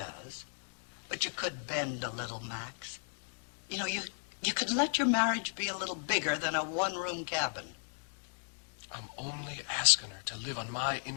But you could bend a little, Max. You know, you could let your marriage be a little bigger than a one-room cabin. I'm only asking her to live on my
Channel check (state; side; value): silent; right; 54 dB below the other